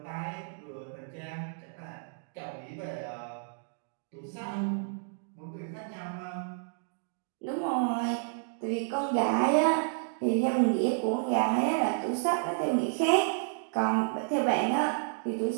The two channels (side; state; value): left; silent; digital silence